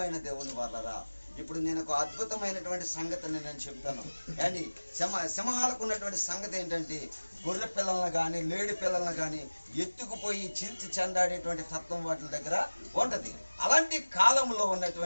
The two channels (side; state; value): both; inverted; correlation -1.00